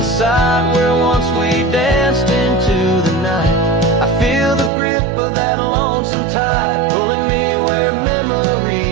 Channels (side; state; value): left; drops out; at 4.7 s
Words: site, where once we danced into the night, I feel the grip of that lonesome tide, pulling me where